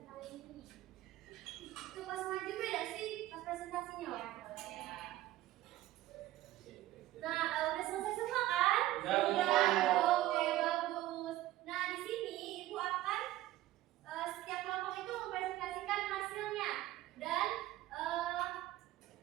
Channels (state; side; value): quieter; left; 15.5 dB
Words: ini? Itu pas maju beda sih pas presentasinya. Nah, udah selesai semua kan? Udah. Oke, bagus. Nah, di sini Ibu akan setiap kelompok itu mempresentasikan hasilnya dan